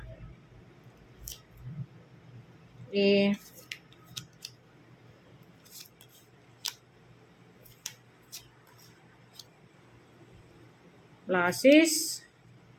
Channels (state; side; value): identical; both; correlation 1.00